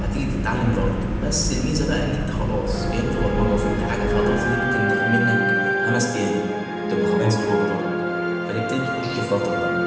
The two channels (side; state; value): both; identical; correlation 1.00